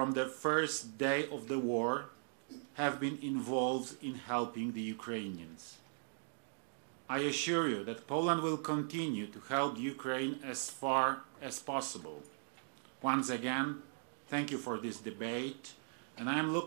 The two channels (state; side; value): silent; left; digital silence